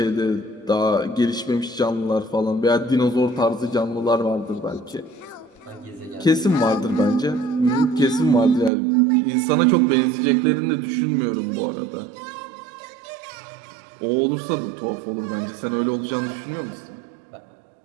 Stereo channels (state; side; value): drops out; left; at 8.7 s